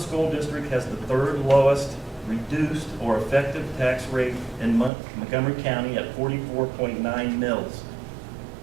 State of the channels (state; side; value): drops out; left; at 4.9 s